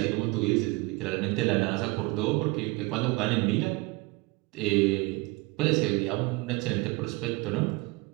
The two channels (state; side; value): quieter; left; 24.3 dB